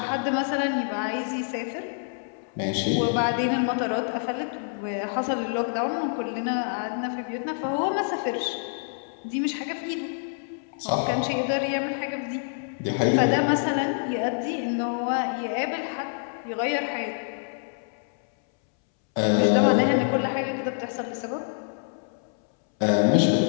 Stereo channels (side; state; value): right; silent; 61 dB below the other